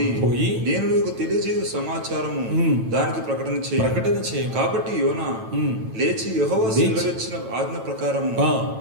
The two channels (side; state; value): left; late; 9.0 ms